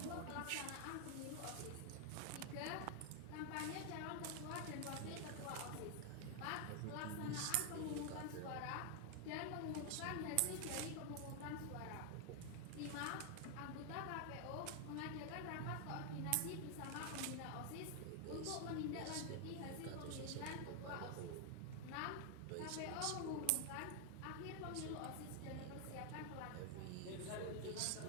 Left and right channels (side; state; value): both; different; correlation 0.00